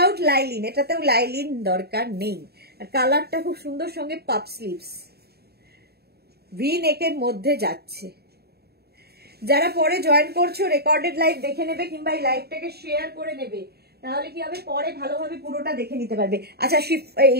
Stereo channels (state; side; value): late; left; 0.46 ms